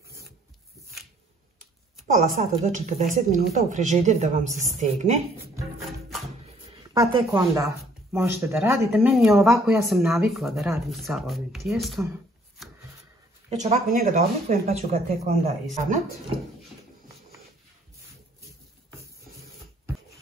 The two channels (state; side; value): normal; both; correlation 0.61